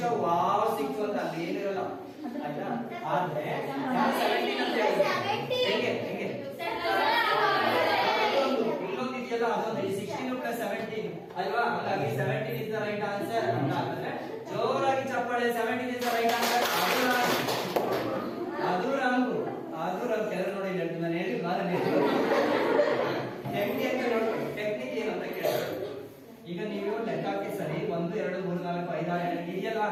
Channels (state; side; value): identical; both; correlation 1.00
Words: ವಾವ್ ಸಿಕ್ತು ಅಂತ ಅಲ್ಲಿ ಏನಿರಲ್ಲ ಆಯ್ತಾ. ಆದ್ರೆ 17 ಅಂತ ಹೇಗೆ ಹೆಂಗೆ ಇಲ್ಲೊಂದು ಇದೆಯಲ್ಲ, ಅದೊಂದು 16 + 17 ಅಲ್ವಾ. ಹಾಗಾಗಿ 17 is the right answer ಅಂತ ಅಂದ್ರೆ ಜೋರಾಗಿ ಚಪ್ಪಾಳೆ. 17 is the right answer. ಅದು ರಾಂಗ್ ಕೆಲವರು ನೋಡಿ ಹೇಳ್ತೀನಿ ನಾನು ಹೇಳಿ ಹೆಂಗೆ ಅಂತ ನೋಡ್ಕೊಳ್ಳಿ. ಟೆಕ್ನಿಕ್ ಏನು ಅಂತ ಕೇಳ್ತಾರೆ. ಈಗ ನೀವು ಲೆಕ್ಕ ಹಾಕಿ ಸರಿ 1 2 3 4 5 6 ಇದೆಯಲ್ಲ,